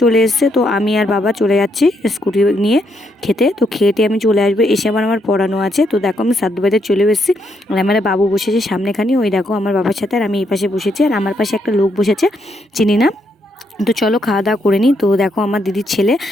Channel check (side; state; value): both; normal; correlation 0.76